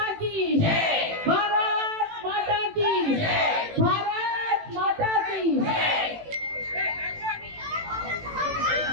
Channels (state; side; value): late; left; 18 ms